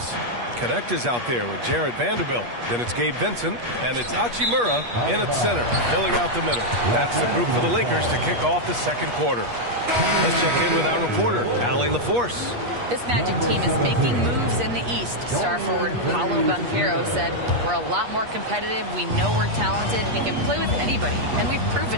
Connect is out there with Jared Vanderbilt. Then it's Gabe Vincent, and it's Hachimura in at center, filling out the middle. That's the group for the Lakers to kick off the second quarter. Let's check in with our reporter, Allie LaForce. This Magic team is making moves in the East. Star forward Paolo Banchero said, "We're a lot more competitive. We know we're talented. We can play with anybody, and we've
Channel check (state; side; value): late; left; 8.4 ms